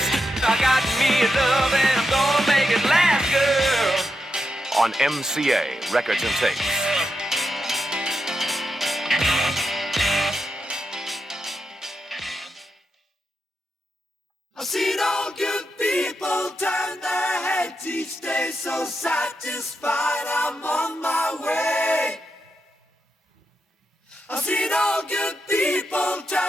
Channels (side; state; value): both; normal; correlation 0.86